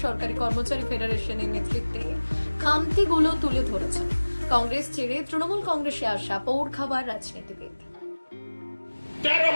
সরকারি কর্মচারী ফেডারেশনের নেতৃত্বে খামতিগুলো তুলে ধরেছেন কংগ্রেস ছেড়ে তৃণমূল কংগ্রেসে আসা পৌর খাবার রাজনীতিবিদ।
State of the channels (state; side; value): inverted; both; correlation -1.00